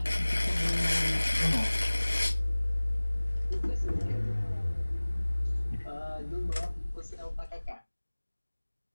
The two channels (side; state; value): both; inverted; correlation -1.00